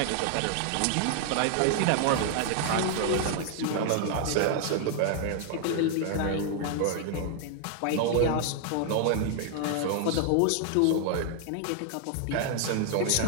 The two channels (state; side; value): different; both; correlation 0.00